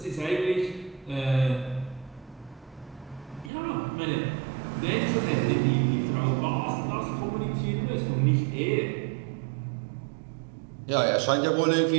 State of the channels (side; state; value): left; drops out; at 3.5 s